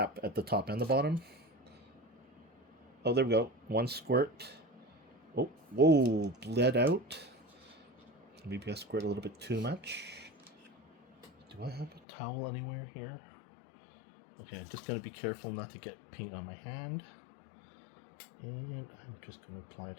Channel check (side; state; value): right; drops out; at 12.0 s